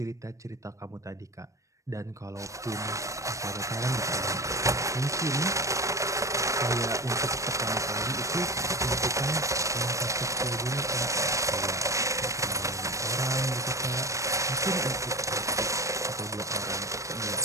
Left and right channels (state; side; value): late; left; 0.15 ms